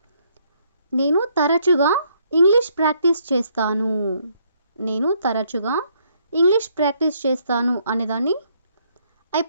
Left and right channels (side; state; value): both; inverted; correlation -0.69